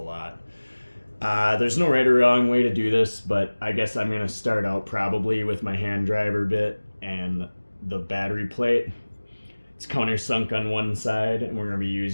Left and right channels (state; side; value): inverted; both; correlation -1.00